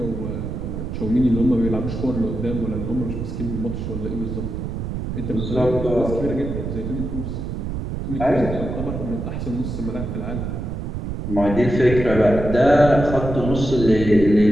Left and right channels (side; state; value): right; noise; rumble, 5 dB below the sound